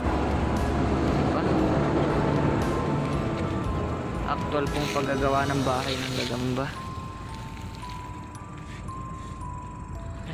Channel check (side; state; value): both; identical; correlation 1.00